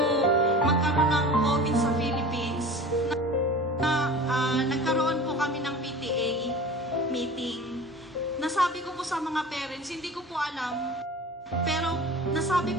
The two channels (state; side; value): normal; both; correlation 0.37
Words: magkaroon ng COVID sa Philippines, nagkaroon po kami ng PTA meeting. Nasabi ko po sa mga parents, hindi ko po alam, pero nasabi